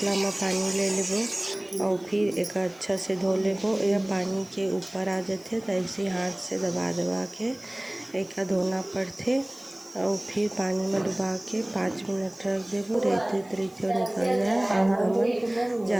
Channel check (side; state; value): right; noise; hiss, 27 dB below the sound